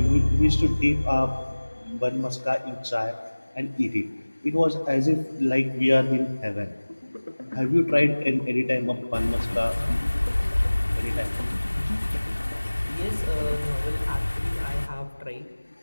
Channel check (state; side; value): inverted; both; correlation -1.00